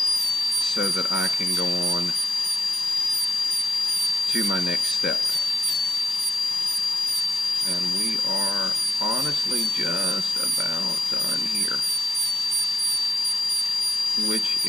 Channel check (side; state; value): both; normal; correlation 0.81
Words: so that I can go on to my next step. And we are honestly just about done here, which